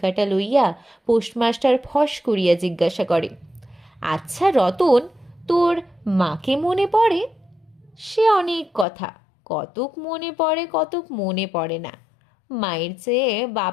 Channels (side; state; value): right; drops out; at 8.8 s